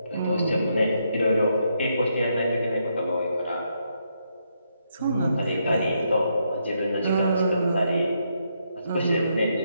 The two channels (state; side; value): inverted; both; correlation -0.78